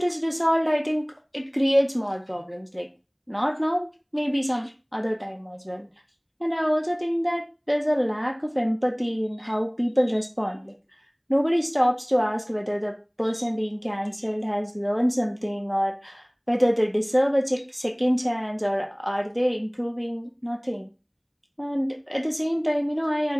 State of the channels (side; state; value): both; identical; correlation 1.00